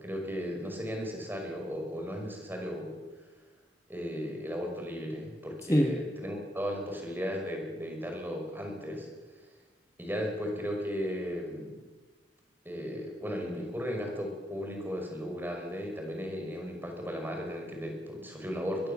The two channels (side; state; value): both; normal; correlation 0.79